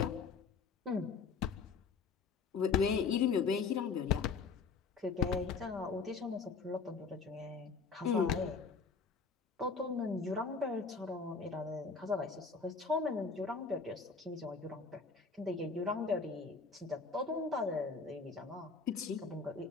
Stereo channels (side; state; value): right; quieter; 5.0 dB